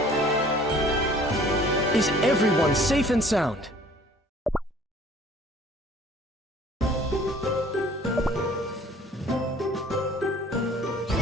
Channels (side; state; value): both; normal; correlation 0.53